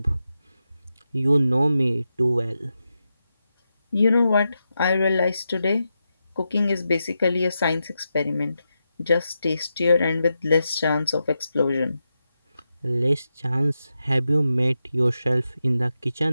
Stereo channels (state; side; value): inverted; both; correlation -0.88